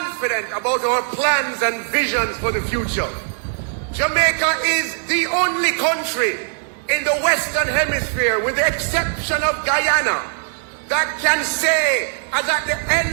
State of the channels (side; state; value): left; silent; digital silence